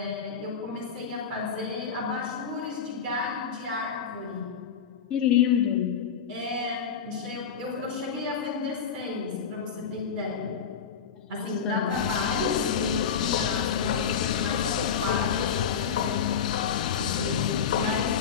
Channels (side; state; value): right; quieter; 6.8 dB